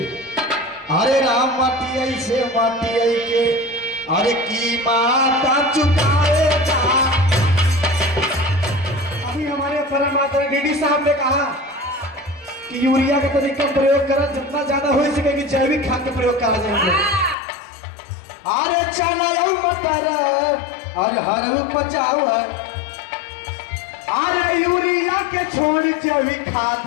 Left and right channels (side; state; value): right; drops out; at 17.4 s